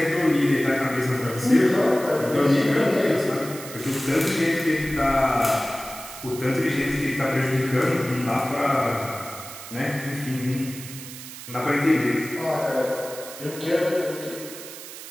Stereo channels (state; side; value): noise; right; hiss, 13 dB below the sound